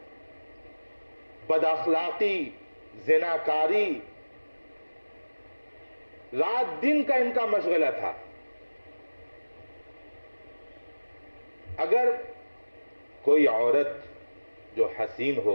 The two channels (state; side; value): inverted; both; correlation -1.00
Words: بد اخلاقی، زناکاری رات دن کا ان کا مشغلہ تھا۔ اگر کوئی عورت جو حسین